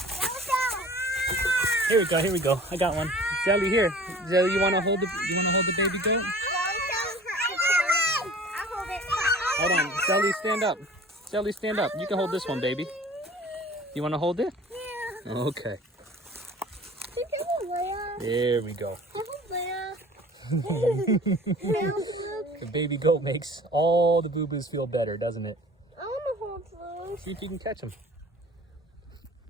Here we go. Here we go. I got one. Zelly, here. Zelly, you want to hold the baby goat? Hold on. Zelly, stand up. Zelly, stand up. You can hold this one, baby. You want to hold it? Yeah. Okay. There we go. The baby goat makes all the boo-boos feel better, doesn't it? I want to hold those. See if you can catch them.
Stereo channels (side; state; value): both; normal; correlation 0.46